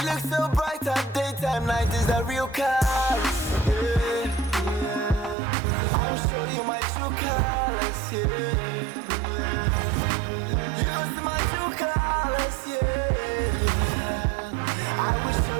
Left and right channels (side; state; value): left; drops out; at 5.4 s